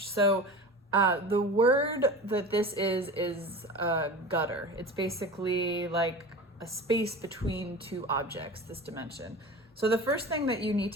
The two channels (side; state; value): both; normal; correlation 0.33